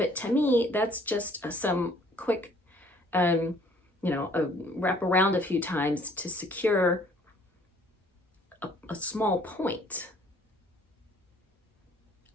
to me, that's just some quick, wrap around a few times to secure a small point.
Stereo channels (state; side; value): normal; both; correlation 0.58